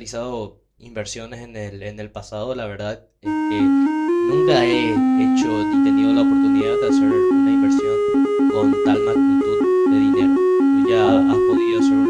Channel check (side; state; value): both; identical; correlation 1.00